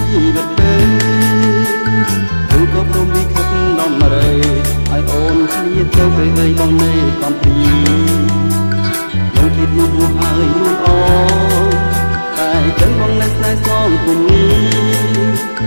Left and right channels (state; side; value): inverted; both; correlation -1.00